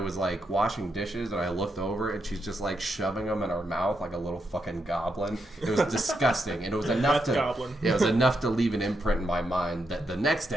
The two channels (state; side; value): normal; both; correlation 0.82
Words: like washing dishes, and I looked over, and she's just like shoving them in her mouth like a little fucking goblin. It was disgusting, and it was enough That's goblin. it was enough to leave an imprint in my mind that the next